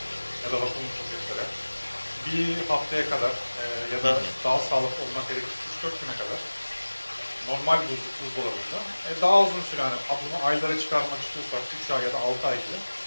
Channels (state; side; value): inverted; both; correlation -1.00